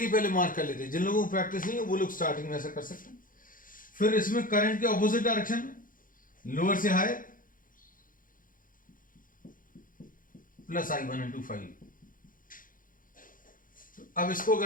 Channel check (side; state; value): right; late; 0.40 ms